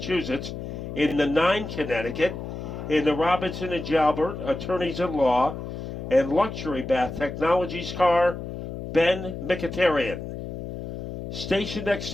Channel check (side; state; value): left; noise; hum, 8 dB below the sound